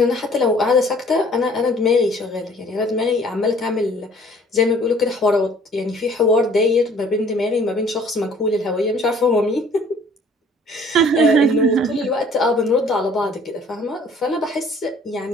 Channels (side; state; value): both; normal; correlation 0.55